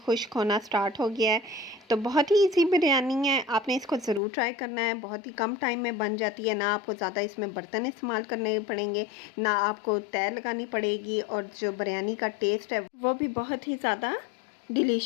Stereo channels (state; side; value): drops out; right; at 4.2 s